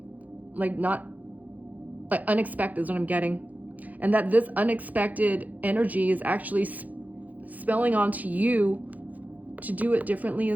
Like not, like unexpected is what I'm getting. And that this unexpected energy is actually spelling onto you to do it differently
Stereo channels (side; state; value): left; late; 0.079 ms